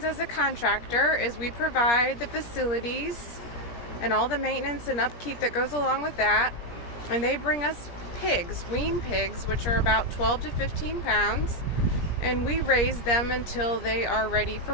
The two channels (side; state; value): right; late; 17 ms